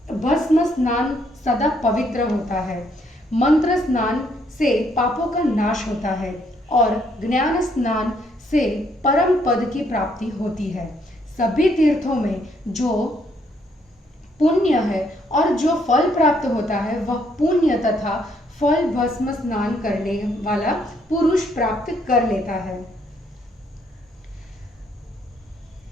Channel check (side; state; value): both; normal; correlation 0.70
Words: भस्म स्नान सदा पवित्र होता है। मंत्र स्नान से पापों का नाश होता है और ज्ञान स्नान से परम पद की प्राप्ति होती है। सभी तीर्थों में जो पुण्य है और जो फल प्राप्त होता है वह पुण्य तथा फल भस्म स्नान करने वाला पुरुष प्राप्त कर लेता है।